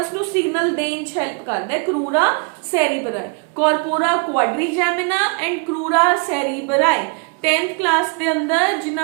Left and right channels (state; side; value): quieter; left; 37.3 dB